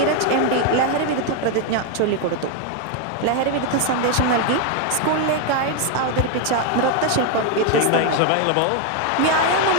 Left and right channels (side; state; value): both; different; correlation 0.01